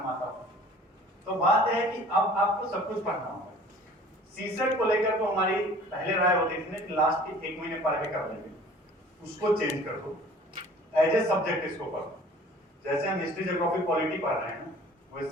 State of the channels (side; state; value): both; normal; correlation 0.49